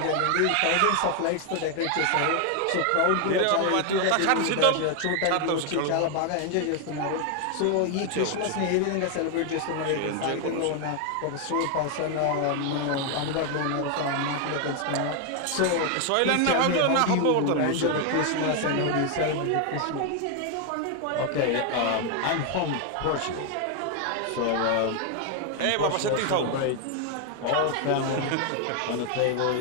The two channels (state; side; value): different; both; correlation 0.01